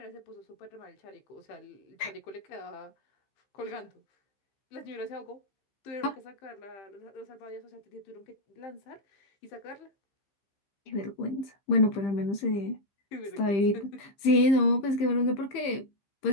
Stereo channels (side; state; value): right; late; 15 ms